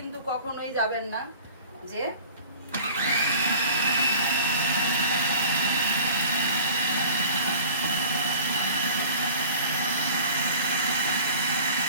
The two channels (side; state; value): both; inverted; correlation -0.43